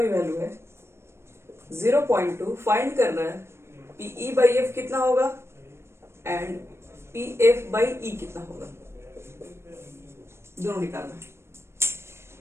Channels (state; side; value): late; left; 0.12 ms